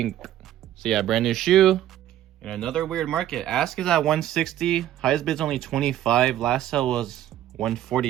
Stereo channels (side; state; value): left; quieter; 12.4 dB